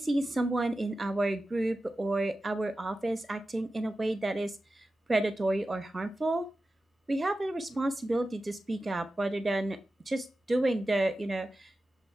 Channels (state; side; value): normal; both; correlation 0.93